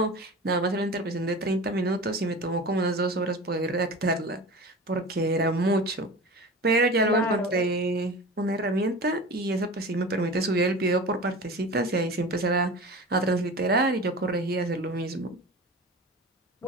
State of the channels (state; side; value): normal; both; correlation 0.34